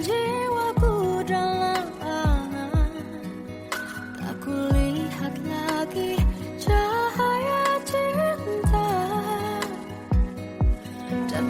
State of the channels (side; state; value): both; identical; correlation 1.00